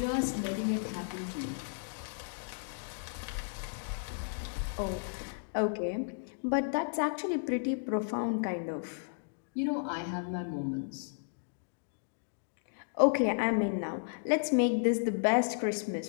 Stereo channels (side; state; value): right; silent; digital silence